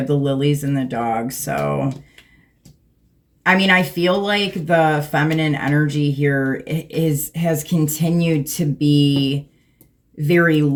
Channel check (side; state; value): both; identical; correlation 1.00